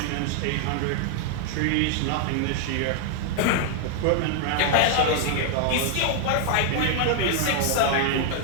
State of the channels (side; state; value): both; different; correlation 0.00